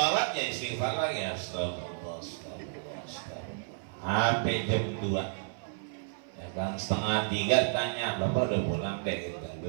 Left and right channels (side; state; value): left; silent; 57 dB below the other